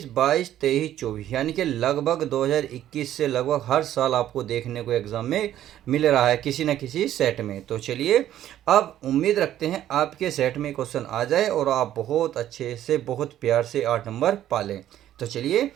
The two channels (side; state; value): left; quieter; 12.1 dB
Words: 22, 23, 24, यानी कि लगभग 2021 से लगभग हर साल आपको देखने को एग्जाम में मिल रहा है किसी न किसी सेट में। तो चलिए, अब उम्मीद रखते हैं आपके सेट में क्वेश्चन आ जाए और आप बहुत अच्छे से, बहुत प्यार से 8 नंबर पालें। तो चलिए,